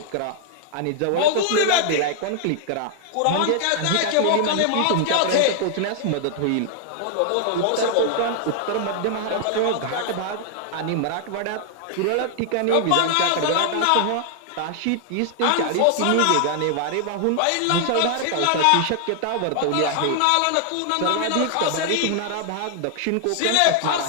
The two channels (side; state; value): both; different; correlation 0.00